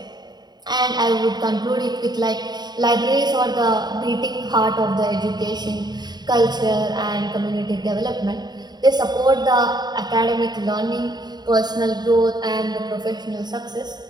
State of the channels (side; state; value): left; late; 0.20 ms